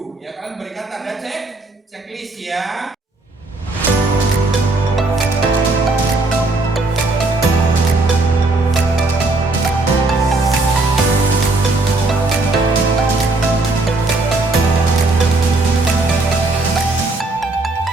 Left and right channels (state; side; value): quieter; left; 3.1 dB